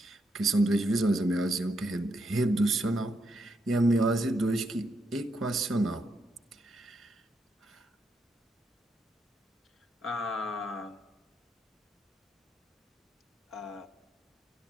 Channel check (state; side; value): normal; both; correlation 0.79